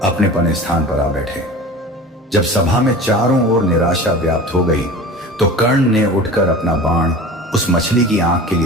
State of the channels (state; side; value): normal; both; correlation 0.36